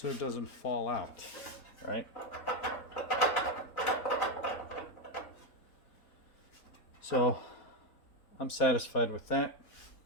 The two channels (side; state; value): right; late; 4.0 ms